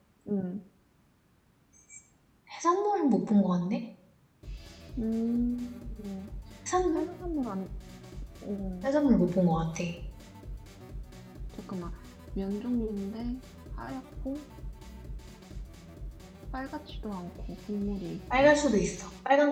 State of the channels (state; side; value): identical; both; correlation 1.00